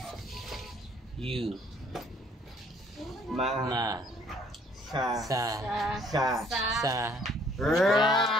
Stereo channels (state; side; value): normal; both; correlation 0.61